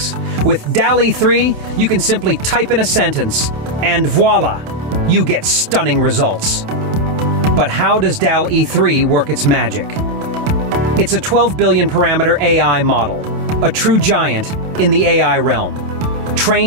With DALL-E 3, you can simply type in a sentence, and voila, you get stunning results. But how does DALL-E 3 work its magic? It's a 12 billion parameter AI model, a true giant in the AI realm.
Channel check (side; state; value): left; late; 27 ms